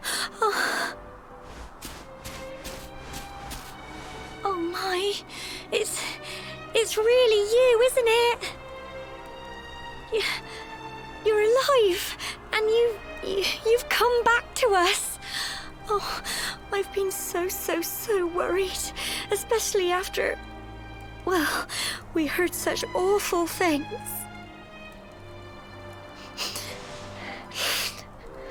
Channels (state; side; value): identical; both; correlation 1.00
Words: Oh my, it's really you, isn't it? You're alive, and you've come back to us. Oh, I've been so worried, especially after, well, we heard such awful things.